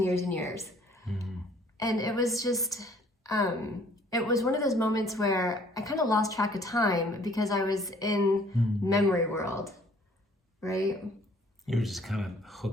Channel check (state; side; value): normal; both; correlation 0.58